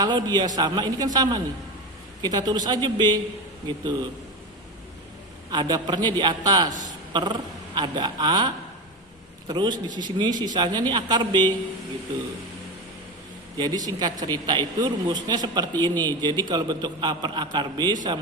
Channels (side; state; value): both; normal; correlation 0.21